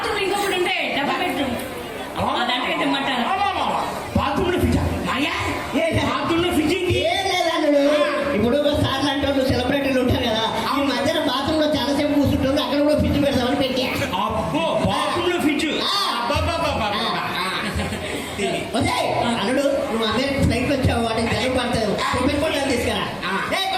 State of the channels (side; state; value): both; identical; correlation 1.00